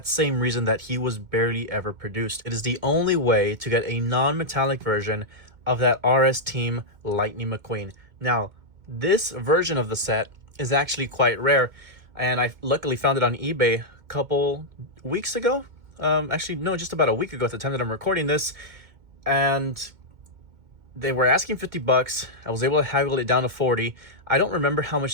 same reason that he was barely ever produced. It is the only way to get a non-metallic version of that RS Team Lightning McQueen. Now, this version of the set is actually quite rare, and I luckily found it on eBay a couple weeks ago. Actually, no, just about a week ago at the time that I'm recording this, and they were asking 50 bucks. I was able to haggle it down to 40. I don't remember how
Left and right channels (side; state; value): left; late; 2.2 ms